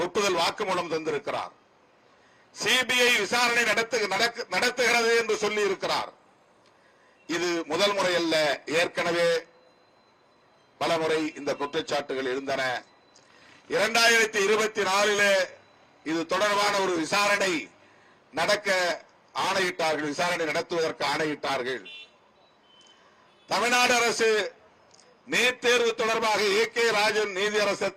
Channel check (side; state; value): both; identical; correlation 1.00